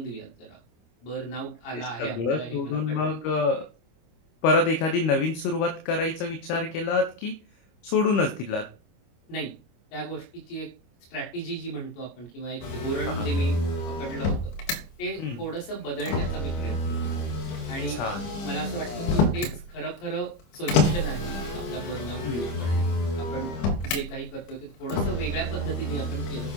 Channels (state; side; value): late; right; 25 ms